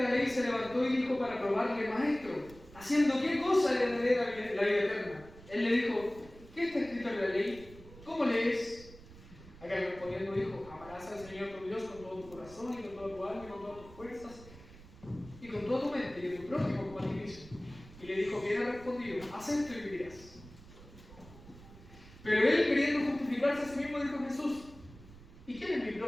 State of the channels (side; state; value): right; noise; rumble, 19 dB below the sound